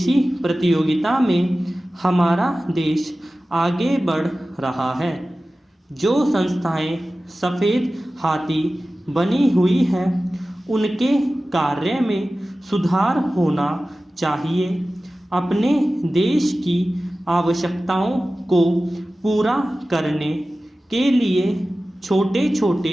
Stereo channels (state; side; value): normal; both; correlation 0.96